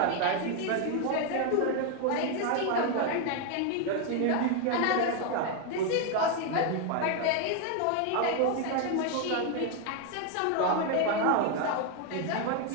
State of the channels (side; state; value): both; different; correlation 0.01